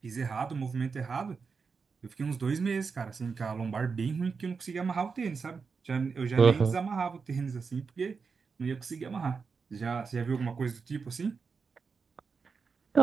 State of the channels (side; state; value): left; quieter; 5.2 dB